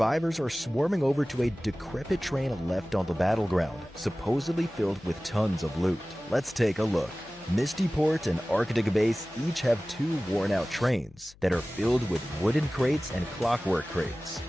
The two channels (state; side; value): noise; left; hum, 26 dB below the sound